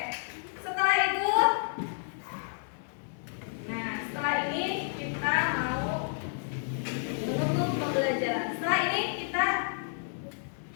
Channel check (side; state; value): right; silent; digital silence